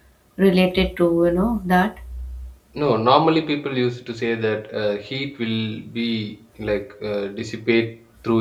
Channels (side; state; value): both; identical; correlation 1.00